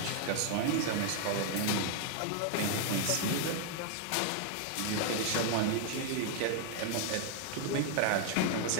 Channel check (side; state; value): both; different; correlation 0.00